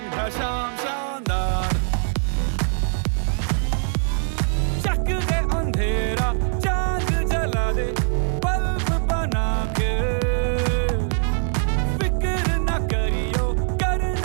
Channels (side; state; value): left; silent; 64 dB below the other